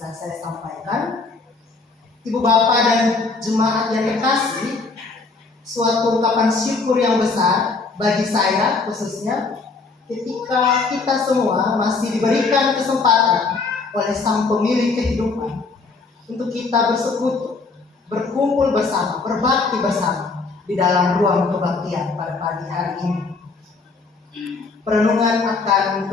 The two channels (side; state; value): right; quieter; 4.1 dB